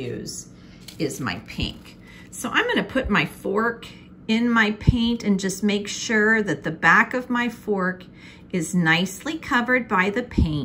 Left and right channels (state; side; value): identical; both; correlation 1.00